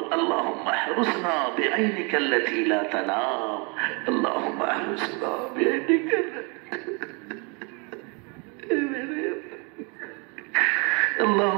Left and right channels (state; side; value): quieter; left; 32.7 dB